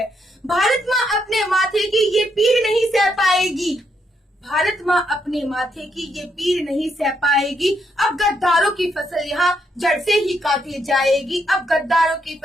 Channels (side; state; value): both; normal; correlation 0.77